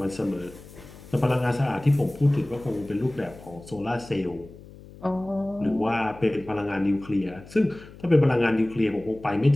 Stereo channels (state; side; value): noise; left; hum, 19 dB below the sound